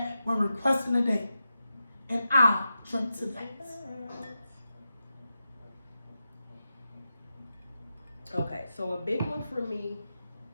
when requesting a date. And I'll drink to that. Okay, so a big one for me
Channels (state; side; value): inverted; both; correlation -0.90